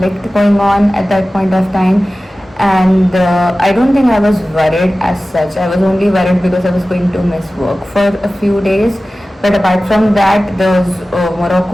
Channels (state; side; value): normal; both; correlation 0.96